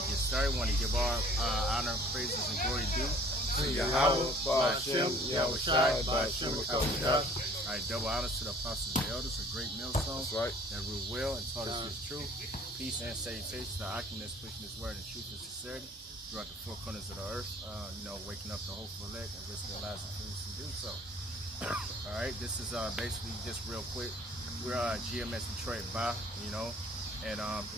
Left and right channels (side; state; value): both; normal; correlation 0.53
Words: get started, want to give our honor, praises, and glory due to Yahweh, Ba'ashem, Yahushai, Ba'ashem, Yahushai. All right. Double honors to the apostles and elders, a great millstone. That's right. That rule well and taught us His truth. Peace and salutations to Achaemen's pushing His word in truth and sincerity throughout the four corners of the earth. Waking up the hopeful elect and risk their lives and fools to do so. All right, this is basically just real quick. We're GMS Detroit by, and a